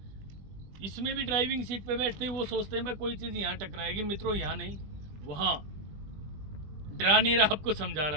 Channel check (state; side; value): late; left; 20 ms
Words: इसमें भी ड्राइविंग सीट पे बैठते ही वो सोचते हैं भाई कोई चीज़ यहाँ टकराएगी। मित्रों यहाँ नहीं, वहाँ। डरा नहीं रहा, आपको समझा